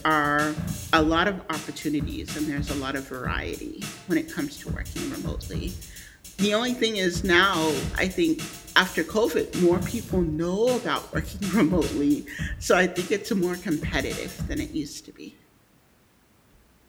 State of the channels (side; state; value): both; identical; correlation 1.00